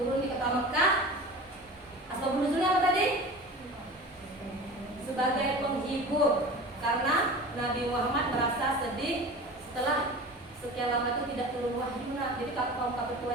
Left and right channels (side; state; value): both; normal; correlation 0.36